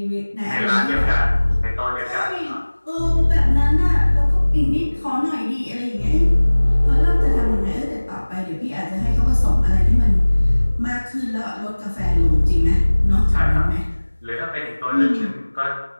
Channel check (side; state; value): both; inverted; correlation -1.00